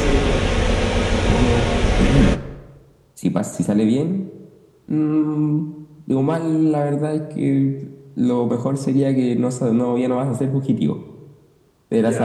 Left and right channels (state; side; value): identical; both; correlation 1.00